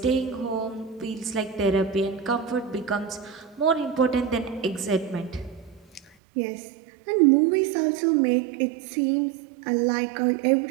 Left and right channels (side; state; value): left; drops out; at 6.1 s